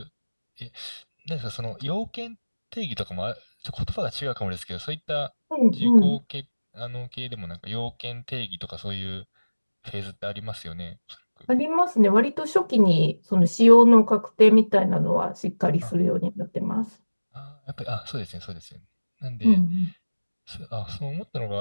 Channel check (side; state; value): both; inverted; correlation -1.00